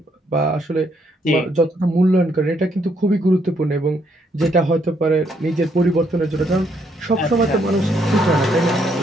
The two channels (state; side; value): normal; both; correlation 0.72